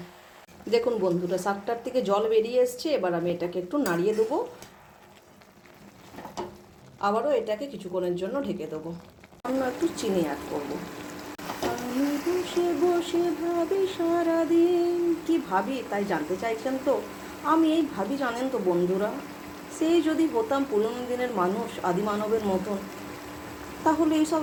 দেখুন বন্ধুরা, শাকটার থেকে জল বেরিয়ে এসছে। এবার আমি এটাকে একটু নাড়িয়ে দেবো, আবারও এটাকে কিছুক্ষণের জন্য ঢেকে দেবো। অন্য একটু চিনি অ্যাড করবো। আমি বসে বসে ভাবি সারাদিন, কি ভাবি তাই জানতে চাইছেন তো? আমি এই ভাবি জানেন তো বন্ধুরা, সেই যদি হতাম পুরনো দিনের মানুষ, আদি মানবের মতন, তাহলে এইসব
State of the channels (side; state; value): both; identical; correlation 1.00